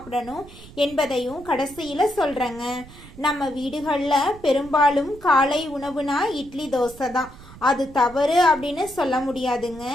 என்பதையும் கடைசியில சொல்றேங்க. நம்ம வீடுகள்ல பெரும்பாலும் காலை உணவுனா இட்லி தோசை தான். அது தவறு அப்படின்னு சொல்ல முடியாதுங்க.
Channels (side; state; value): right; noise; rumble, 19 dB below the sound